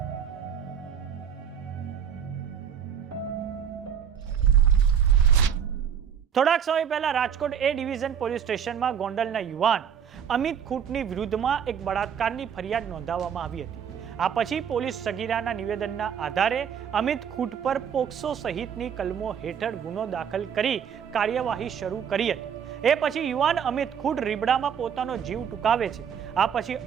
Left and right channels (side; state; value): left; quieter; 8.0 dB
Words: થોડાક સમય પહેલા રાજકોટ એ ડિવિઝન પોલીસ સ્ટેશનમાં ગોંડલના યુવાન અમિત ખૂંટની વિરુદ્ધમાં એક બળાત્કારની ફરિયાદ નોંધાવવામાં આવી હતી। આ પછી પોલીસ સગીરાના નિવેદનના આધારે અમિત ખૂંટ પર પોક્સો સહિતની કલમો હેઠળ ગુનો દાખલ કરી કાર્યવાહી શરૂ કરી હતી। એ પછી યુવાન અમિત ખૂંટ રીબડામાં પોતાનો જીવ ટૂંકાવે છે। આ પછી